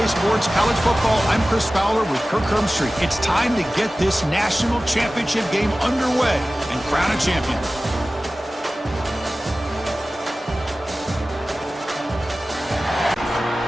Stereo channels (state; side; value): normal; both; correlation 0.97